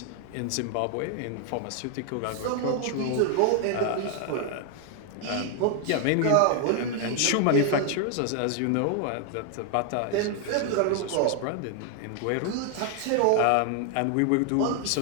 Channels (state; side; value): different; both; correlation 0.00